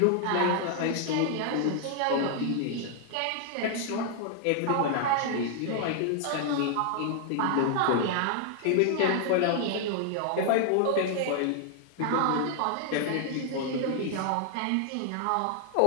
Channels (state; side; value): different; both; correlation 0.00